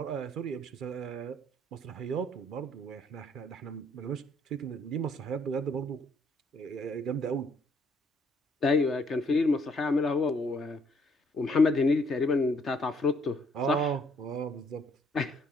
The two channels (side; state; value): both; normal; correlation 0.66